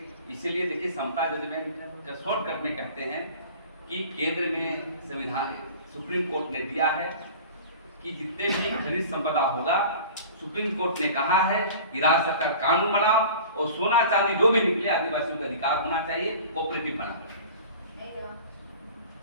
इसीलिए देखिए, समता जजमेंट का शॉर्टकट में कहते हैं कि केंद्र में संविधान, सुप्रीम कोर्ट ने दिया है कि जितने भी खनिज संपदा होगा, सुप्रीम कोर्ट ने कहा है कि राज्य सरकार कानून बनाओ और सोना चांदी जो भी निकले आदिवासियों का अधिकार होना चाहिए, कोऑपरेटिव बना।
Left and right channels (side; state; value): both; inverted; correlation -0.41